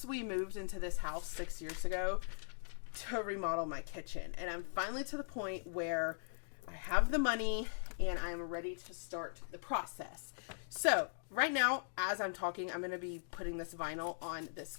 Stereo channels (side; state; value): right; silent; digital silence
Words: we moved into this house 6 years ago to remodel my kitchen, and I'm finally to the point where I have the money and I'm ready to start the process. So right now, as I'm talking, I'm going to be putting this vinyl on this